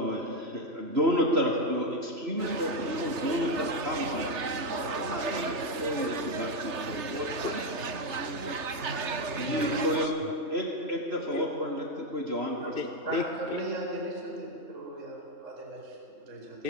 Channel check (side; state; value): left; late; 3.3 ms